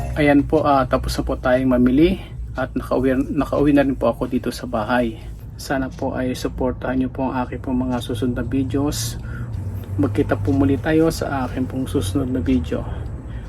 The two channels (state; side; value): identical; both; correlation 1.00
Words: Ayan po, tapos na po tayong mamili at nakauwi na rin po ako dito sa bahay. Sana po ay supportahan nyo po ang aking pong mga susunod na videos. Magkita po muli tayo sa aking pong susunod na video.